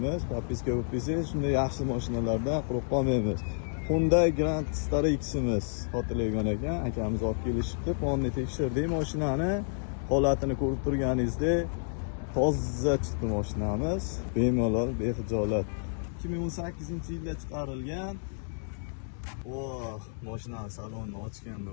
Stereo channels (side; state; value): right; silent; digital silence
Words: Podpiska bo'lsangiz shunday yaxshi mashinalardan quruq qolmaymiz. Hyundai Grand Starx'imiz xotirlaygan ekan, akamiz olib kelishibdi. Fonni tekshirdik, mashinani holatini ko'rib turganingizdek toza chiqdi mashinamiz. Bemalol, bexijolat. 2018-yilda chiqarilgan. Mashina salonni ochganda